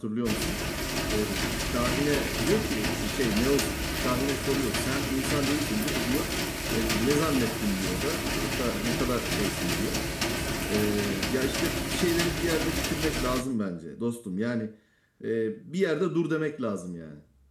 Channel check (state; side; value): identical; both; correlation 1.00